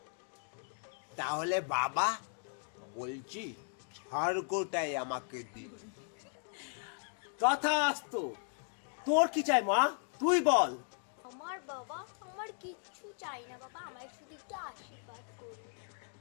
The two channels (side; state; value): right; silent; 53 dB below the other